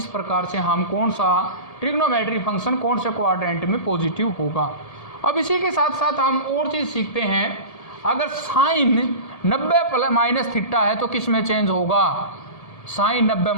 प्रकार से हम कौन सा ट्रिग्नोमेट्री फंक्शन कौन से क्वाड्रेंट में पॉजिटिव होगा। अब इसी के साथ साथ हम और चीज़ सीखते हैं, अगर साइन 90 माइनस थीटा है तो किस में चेंज होगा? साइन 90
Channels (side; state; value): right; late; 1.8 ms